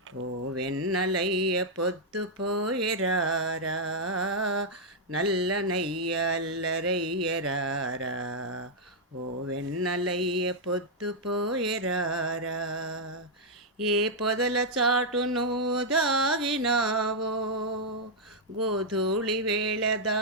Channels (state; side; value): normal; both; correlation -0.04